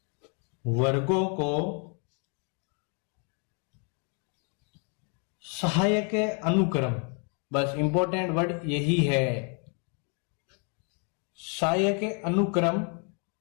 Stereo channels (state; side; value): quieter; right; 38.7 dB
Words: वर्गों को सहायक अनुक्रम, बस इंपॉर्टेंट वर्ड यही है, सहायक अनुक्रम